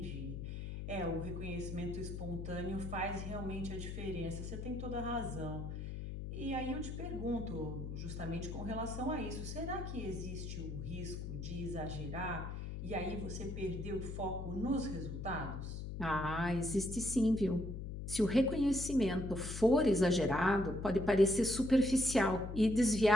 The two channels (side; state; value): left; noise; hum, 6 dB below the sound